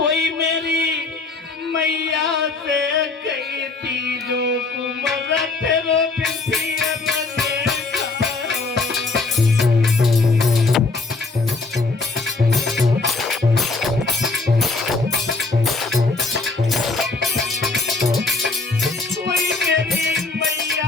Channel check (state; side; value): quieter; right; 3.7 dB